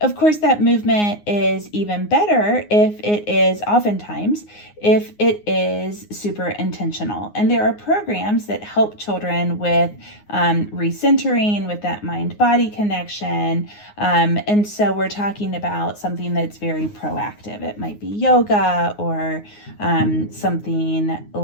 course, that movement is even better if it is super intentional. And there are programs that help children with recentering, with that mind-body connection. And so we're talking about something that's very proactive. It might be yoga or something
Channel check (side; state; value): right; late; 9.6 ms